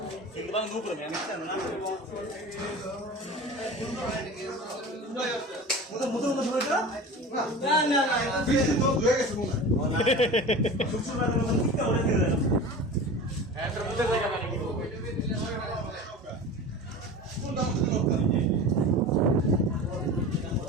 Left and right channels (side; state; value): both; normal; correlation 0.33